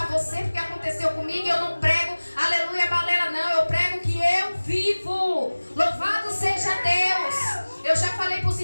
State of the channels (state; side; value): inverted; both; correlation -1.00